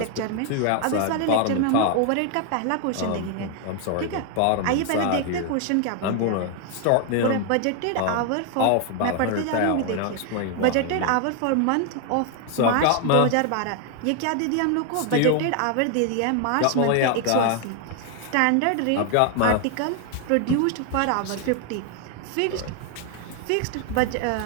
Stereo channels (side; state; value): both; different; correlation 0.00